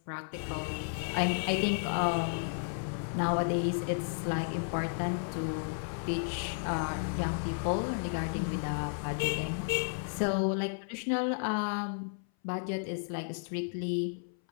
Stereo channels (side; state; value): right; silent; 56 dB below the other